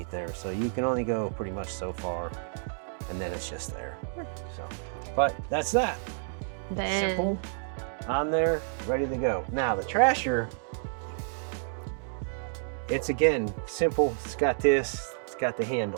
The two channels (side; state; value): left; silent; digital silence